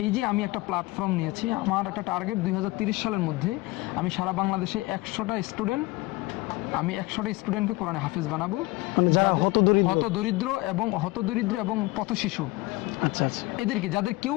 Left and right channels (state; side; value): quieter; right; 21.8 dB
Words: এই যে আমি একটা প্ল্যাটফর্ম নিয়েছি, আমার একটা টার্গেট 2030 সালের মধ্যে আমি সারা বাংলাদেশে 100টা স্টুডেন্টকে কোরআনে হাফেজ বানাবো, মানে যারা হতদরিদ্র এবং পথ শিশু। আচ্ছা আচ্ছা, এদেরকে, যাদের কেউ